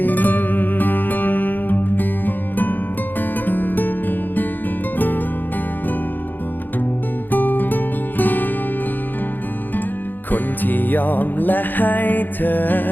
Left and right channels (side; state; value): right; late; 0.089 ms